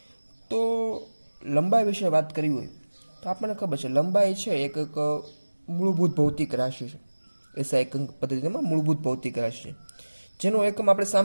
તો લંબાઈ વિશે વાત કરવી હોય તો આપણને ખબર છે લંબાઈ છે એક મૂળભૂત ભૌતિક રાશિ છે. એસઆઈ એકમ પદ્ધતિમાં મૂળભૂત ભૌતિક રાશિ છે જેનો એકમ આપણે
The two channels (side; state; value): both; inverted; correlation -1.00